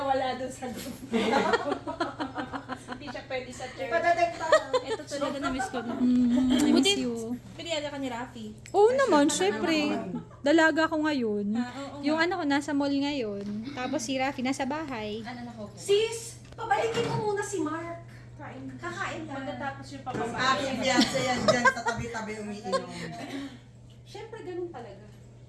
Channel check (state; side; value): identical; both; correlation 1.00